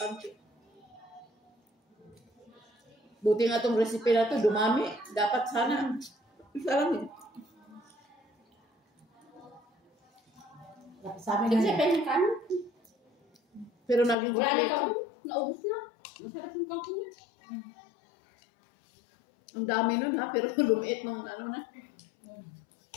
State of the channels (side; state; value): right; drops out; at 14.2 s